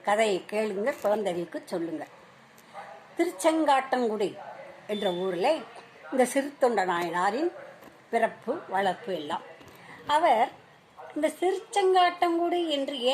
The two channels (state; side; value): identical; both; correlation 1.00